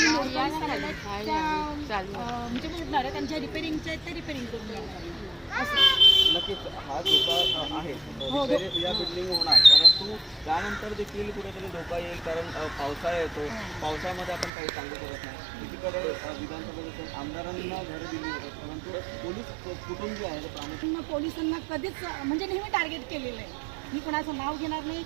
नोटीस झालेल्या आहेत त्या म्हणजे भेटणार आहेत, त्यांच्या रिपेरिंगचे आहेत ते रिपेरिंग करून घेणार असं. नक्कीच हा धोका आहे. या बिल्डिंग होणार, परंतु त्यानंतर देखील कुठेतरी धोका येईल, कारण पावसाळा येतो. पावसामध्ये आपण काही सांगू शकत नाही. एकीकडे विधानसभेतून आमदारांना घरं दिली जातात, परंतु पोलीस कुटुंब जे आहे ते प्रामुख्याने पोलिसांना कधीच म्हणजे नेहमी टार्गेट केलेलं आहे. मी कुणाचं नाव घेणार नाही,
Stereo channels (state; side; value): drops out; left; at 14.5 s